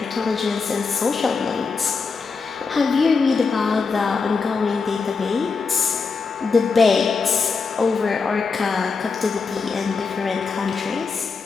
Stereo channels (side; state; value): right; quieter; 4.8 dB